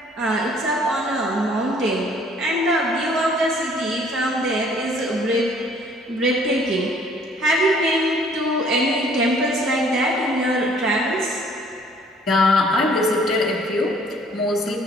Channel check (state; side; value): normal; both; correlation 0.58